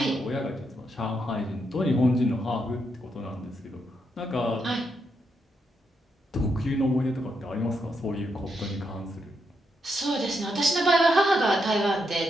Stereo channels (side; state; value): both; normal; correlation 0.81